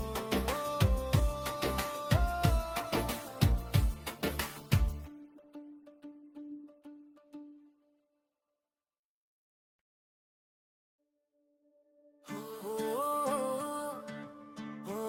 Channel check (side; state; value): both; identical; correlation 1.00